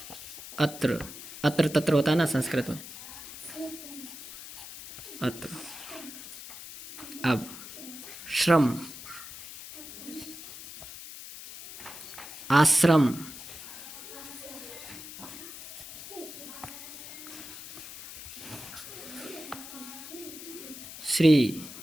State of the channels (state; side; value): noise; left; hiss, 12 dB below the sound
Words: अत्र, अत्र तत्र होता है ना संस्कृत में, अत्र। अब श्रम, आश्रम, श्री।